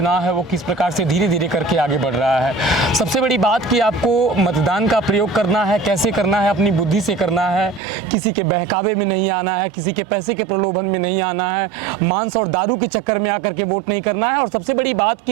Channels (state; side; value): drops out; left; at 7.8 s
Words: है वो किस प्रकार से धीरे धीरे करके आगे बढ़ रहा है। सबसे बड़ी बात कि आपको मतदान का प्रयोग करना है, कैसे करना है, अपनी बुद्धि से करना है, किसी के बहकावे में नहीं आना है, किसी के पैसे के प्रलोभन में नहीं आना है, मांस और दारू के चक्कर में आकर के वोट नहीं करना है। और सबसे बड़ी बात